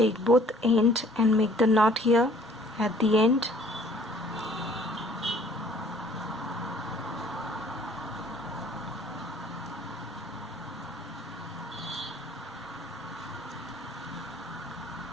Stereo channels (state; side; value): normal; both; correlation 0.56